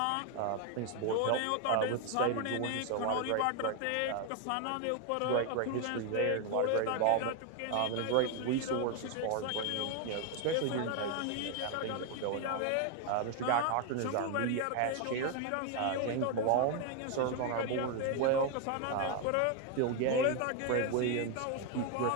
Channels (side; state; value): both; different; correlation 0.01